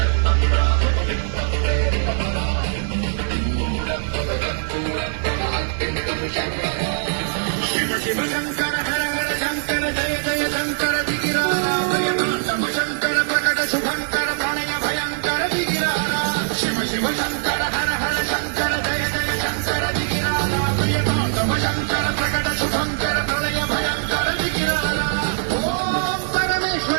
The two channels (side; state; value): left; silent; 64 dB below the other